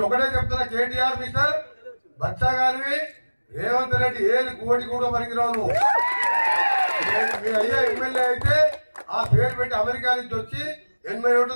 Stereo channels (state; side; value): inverted; both; correlation -1.00